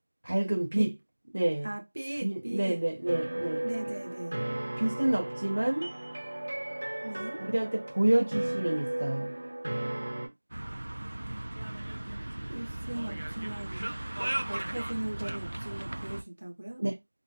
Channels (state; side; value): inverted; both; correlation -1.00